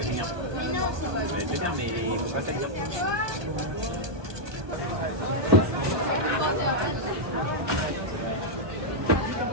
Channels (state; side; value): late; left; 1.2 ms